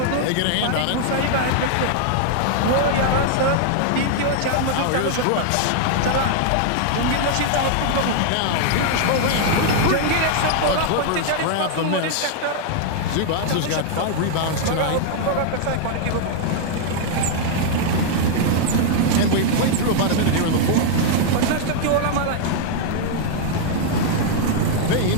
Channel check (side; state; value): both; different; correlation 0.00